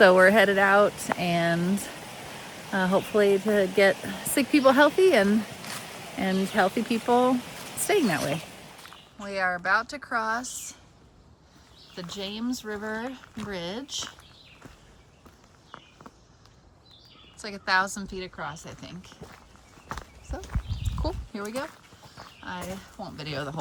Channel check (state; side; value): identical; both; correlation 1.00